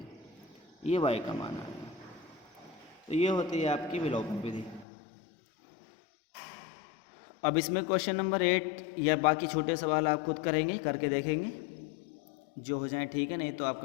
ये y का मान आएगा। तो ये होती है आपकी विलोपन विधि। अब इसमें क्वेश्चन नंबर 8 या बाकी छोटे सवाल आप खुद करेंगे, करके देखेंगे, जो हो जाए ठीक है, नहीं तो आप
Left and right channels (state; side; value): drops out; right; at 4.9 s